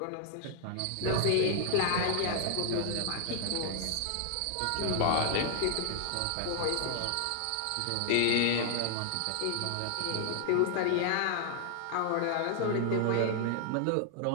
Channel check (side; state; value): both; different; correlation 0.00